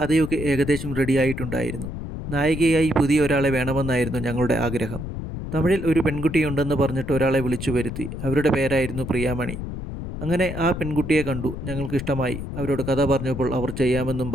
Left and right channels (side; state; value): left; noise; rumble, 7 dB below the sound